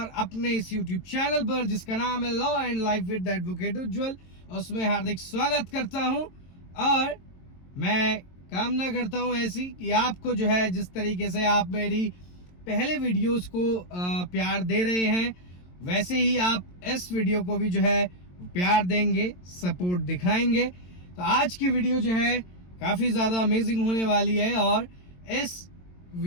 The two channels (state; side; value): late; right; 22 ms